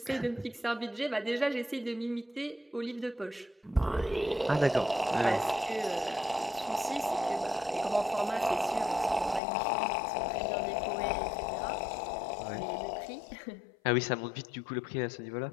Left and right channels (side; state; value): right; drops out; at 9.4 s